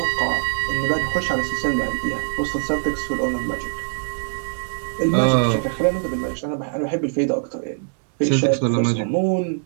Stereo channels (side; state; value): left; silent; digital silence